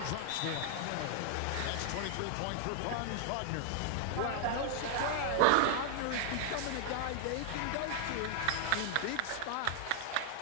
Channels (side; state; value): both; different; correlation 0.00